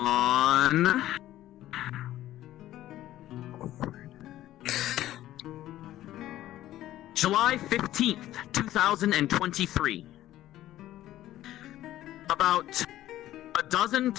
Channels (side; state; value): right; quieter; 14.0 dB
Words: July 15th, 2023, about a dozen